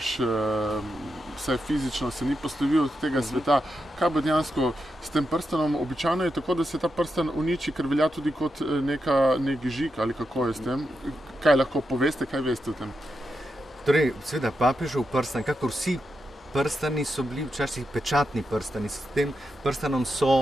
vsaj fizično se ni poslovil od tega sveta. Kaj bo dejansko s tem prstenom? Običajno je tako, da se ta prsten uniči, ker velja tudi kot nek žig, ali kako je s tem? Kaj lahko poveste, kaj veste o tem? Torej, seveda, papežev prsten, kakor vsi prstani so bili včasih pečatni prstani. S tem prstanom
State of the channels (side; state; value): both; normal; correlation 0.86